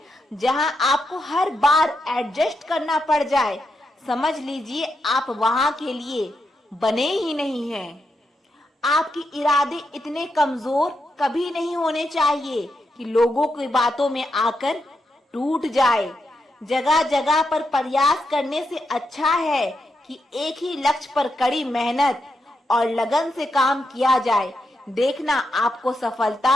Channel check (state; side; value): normal; both; correlation 0.84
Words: जहां आपको हर बार एडजस्ट करना पड़ जाए, समझ लीजिए आप वहां के लिए बने ही नहीं हैं। आपके इरादे इतने कमजोर कभी नहीं होने चाहिए कि लोगों की बातों में आकर टूट जाए। जगह जगह पर प्रयास करने से अच्छा है कि एक ही लक्ष्य पर कड़ी मेहनत और लगन से काम किया जाए। देखना आपको